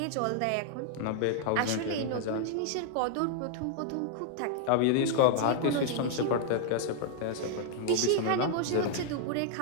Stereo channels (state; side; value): different; both; correlation 0.00